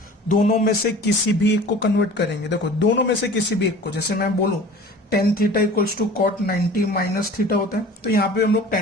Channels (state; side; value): normal; both; correlation 0.43